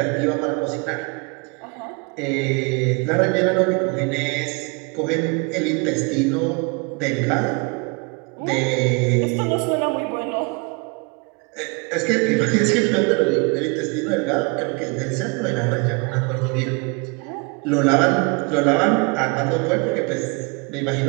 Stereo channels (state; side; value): quieter; left; 31.4 dB